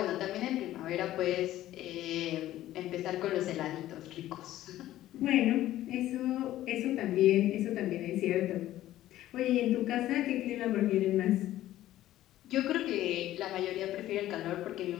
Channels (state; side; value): quieter; right; 14.1 dB